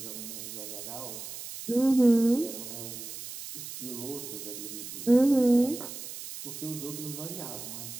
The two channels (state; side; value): noise; right; hiss, 10 dB below the sound